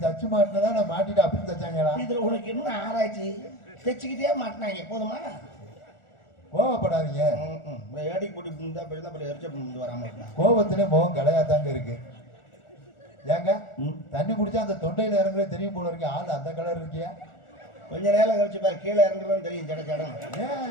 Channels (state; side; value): late; right; 1.4 ms